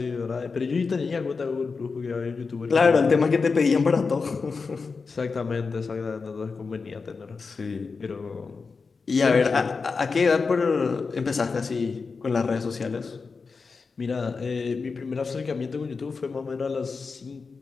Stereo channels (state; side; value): quieter; right; 4.7 dB